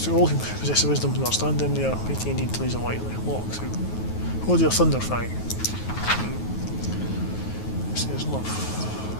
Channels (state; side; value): late; right; 9.4 ms